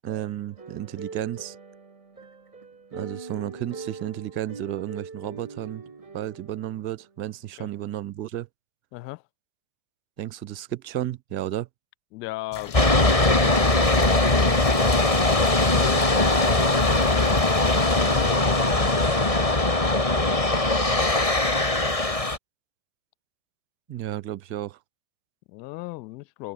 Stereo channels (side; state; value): right; late; 1.6 ms